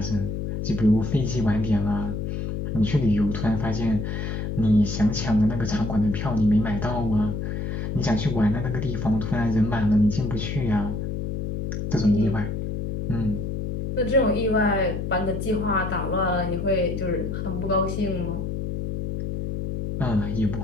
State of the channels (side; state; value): left; noise; hum, 3 dB below the sound